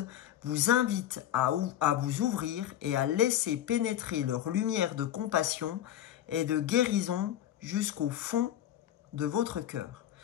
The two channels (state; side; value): quieter; right; 11.6 dB